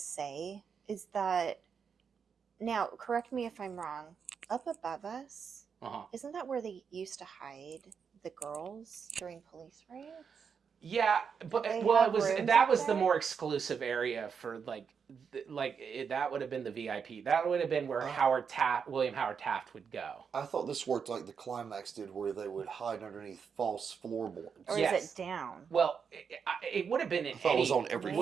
is that, now, correct me if I'm wrong, up above us, isn't that where they used to hide the girls during police raids? Yeah, but They well, have it was rooms that up was the there? more exclusive area for that would have been the VIP. That would have been where William Howard Taft would go. I thought this worked like the Climax did, where they would hide underneath false floorboards. Or Yes. is it down? Well, it would have been in thought it was on every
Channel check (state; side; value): quieter; left; 6.5 dB